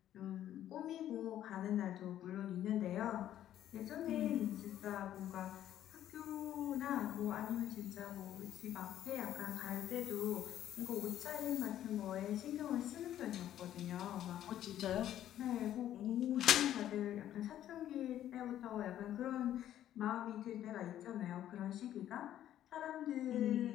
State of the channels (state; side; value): quieter; right; 11.8 dB